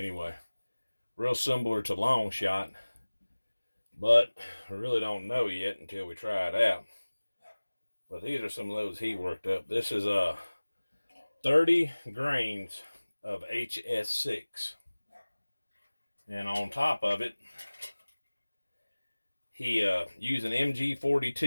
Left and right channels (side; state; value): both; inverted; correlation -1.00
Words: Real similar to Long Shot, but I really don't know yet until we try it out. But these are some of those he worked up. This is 30 grains of hs-6, and on top of it he used an